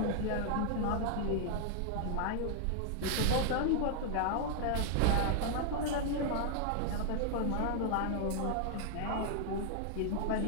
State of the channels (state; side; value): different; both; correlation 0.00